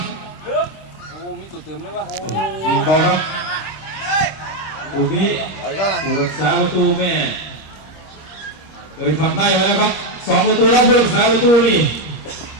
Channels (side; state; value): right; late; 25 ms